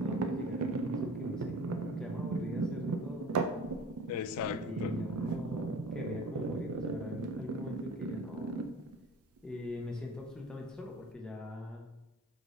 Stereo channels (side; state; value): both; normal; correlation 0.42